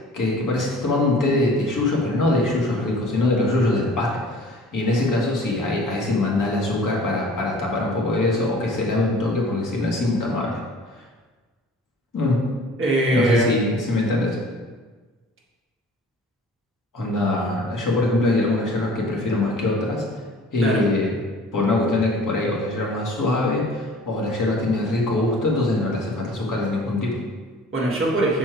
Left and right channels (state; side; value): normal; both; correlation 0.48